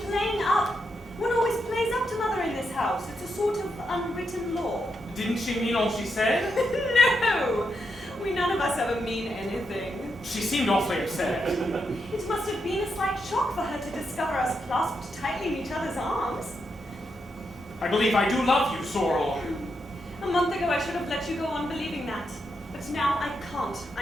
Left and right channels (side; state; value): both; normal; correlation 0.83